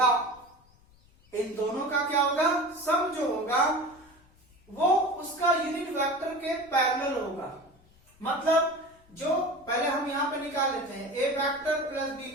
इन दोनों का क्या होगा, सम जो होगा वो उसका यूनिट वेक्टर के पैरेलल होगा। मतलब जो पहले हम यहाँ पे निकाल लेते हैं ए वेक्टर प्लस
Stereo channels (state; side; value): noise; left; rumble, 29 dB below the sound